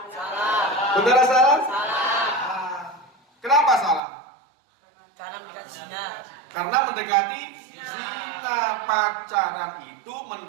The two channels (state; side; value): drops out; left; at 4.0 s